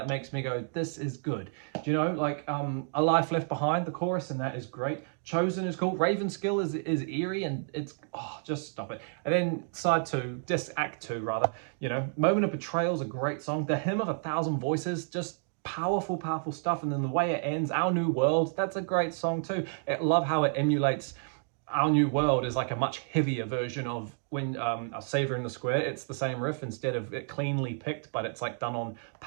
makes me go, this is good. Do you know, like A Life Left Behind, the chorus, and that is great. Chosen is cool. Ravenskill is eerie, and it's, oh, just stop it. And then side 2, act 2 rather, you know, Moment of Betrayal is a great song. The Hymn of a Thousand Voices, just powerful stuff. And then the way it ends, Our New World, that's a great song too. I love how it emulates Our New World is like a much heavier version of when A Savior in the Square. It's the same riff instead of it cleanly picked, but it's like done on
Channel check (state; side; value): silent; left; 58 dB below the other